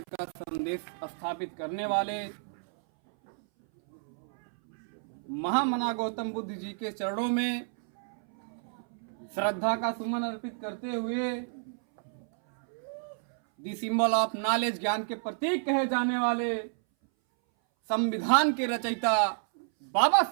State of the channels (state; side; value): silent; left; 58 dB below the other